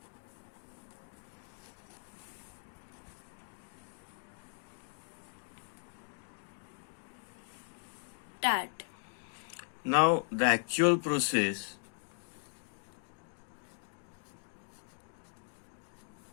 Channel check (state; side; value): silent; right; digital silence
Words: Start. Now the actual process.